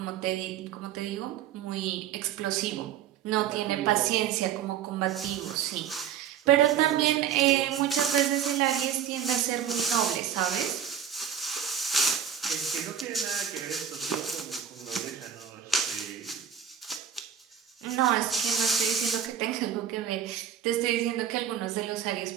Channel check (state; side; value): quieter; left; 8.9 dB